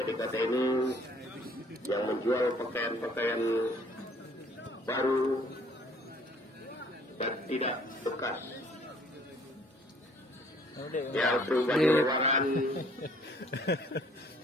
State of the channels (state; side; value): normal; both; correlation 0.58